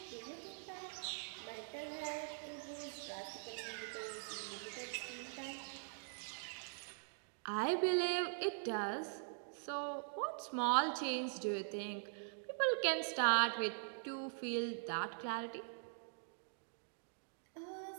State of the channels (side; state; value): left; silent; digital silence